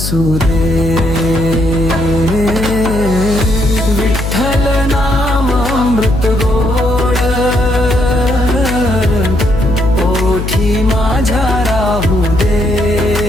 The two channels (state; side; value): noise; left; hum, 5 dB below the sound